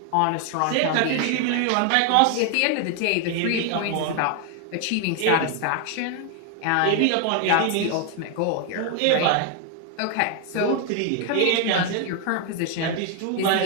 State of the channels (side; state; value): both; different; correlation 0.00